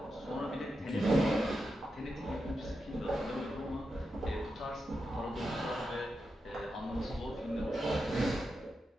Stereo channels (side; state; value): both; normal; correlation 0.88